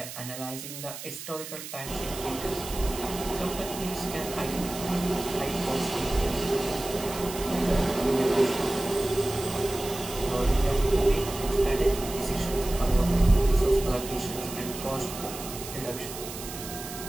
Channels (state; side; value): noise; right; hiss, 10 dB below the sound